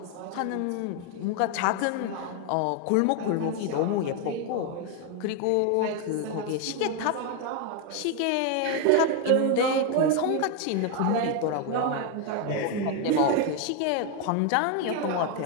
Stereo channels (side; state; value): both; different; correlation 0.01